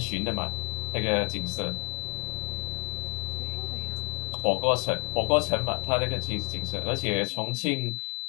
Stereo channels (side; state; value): right; quieter; 29.5 dB